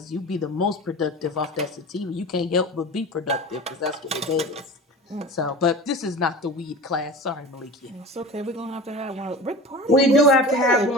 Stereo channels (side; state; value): both; normal; correlation 0.35